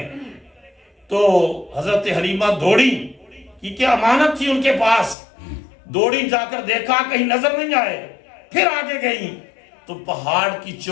تو حضرت حلیمہ دوڑی کیونکہ امانت تھی ان کے پاس، دوڑی جا کر دیکھا کہیں نظر نہیں آئے، پھر آگے گئی تو پہاڑ کی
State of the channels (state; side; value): drops out; right; at 5.2 s